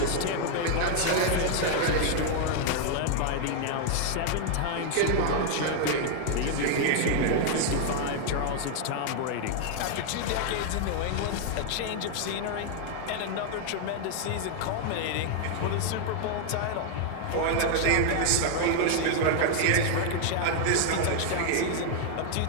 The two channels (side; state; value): both; different; correlation 0.00